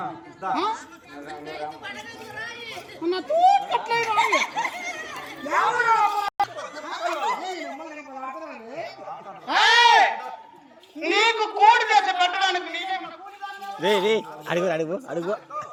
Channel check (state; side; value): identical; both; correlation 1.00